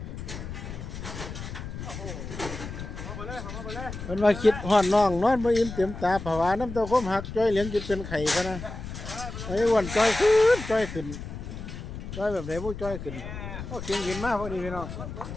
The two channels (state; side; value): noise; left; rumble, 9 dB below the sound